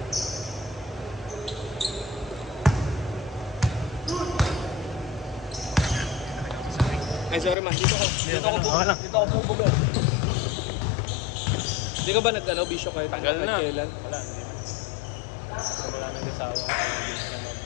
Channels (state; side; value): drops out; right; at 7.6 s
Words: Ay, sorry man. Dito ako bubuga. Hindi ka ba nag-ano, bisyo kayo? Tagal na. Kailan? Wala, hindi na. Wala nag-asawa.